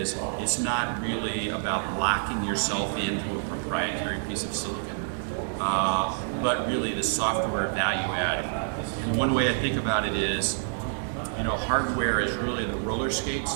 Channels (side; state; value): left; silent; digital silence